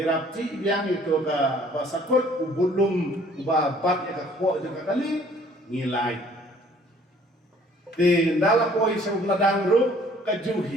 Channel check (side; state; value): both; normal; correlation 0.57